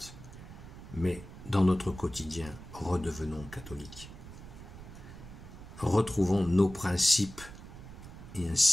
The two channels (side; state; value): right; noise; rumble, 15 dB below the sound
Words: Mais dans notre quotidien, redevenons catholiques. Retrouvons nos principes, et